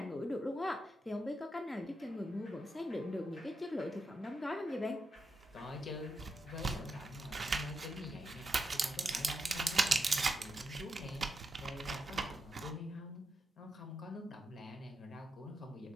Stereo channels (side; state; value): both; normal; correlation 0.84